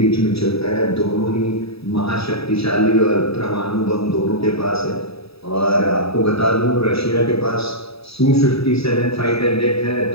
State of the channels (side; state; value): right; late; 0.77 ms